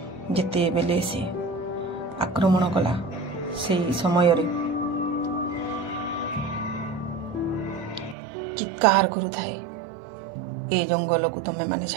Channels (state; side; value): drops out; left; at 8.2 s